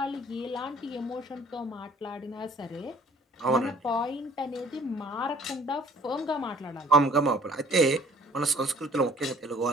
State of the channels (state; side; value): normal; both; correlation 0.54